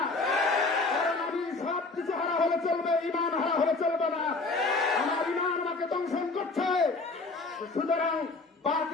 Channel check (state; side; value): quieter; right; 3.6 dB